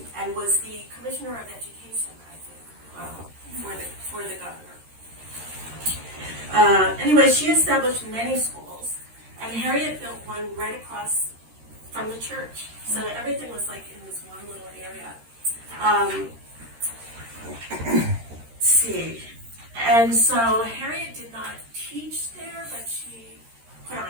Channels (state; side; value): late; left; 13 ms